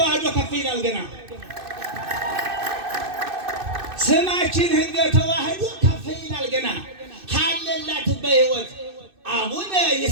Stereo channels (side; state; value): left; late; 2.6 ms